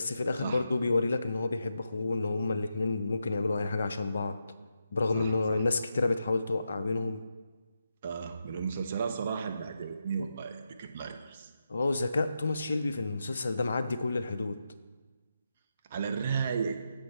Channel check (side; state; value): both; inverted; correlation -0.86